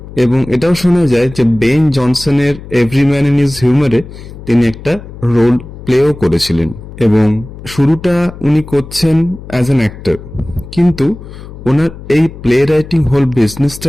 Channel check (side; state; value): left; noise; hum, 15 dB below the sound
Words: এবং এটাও শোনা যায় যে বেন জনসনের এভরি ম্যান ইন হিজ হিউমারে তিনি একটা রোল প্লেও করেছিলেন। এবং শুরুটা উনি করছেন অ্যাজ অ্যান অ্যাক্টর, কিন্তু ওনার এই প্লে রাইটিং হোল